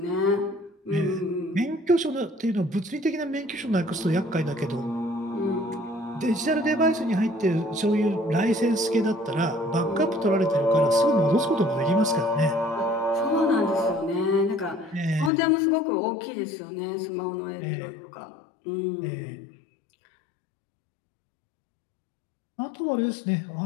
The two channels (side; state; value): right; drops out; at 15.3 s